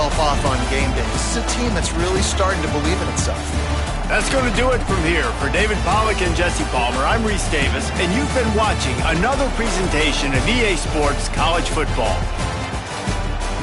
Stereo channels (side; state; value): both; identical; correlation 1.00